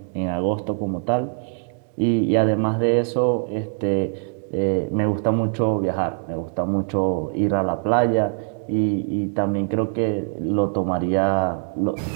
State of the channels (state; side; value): silent; left; 57 dB below the other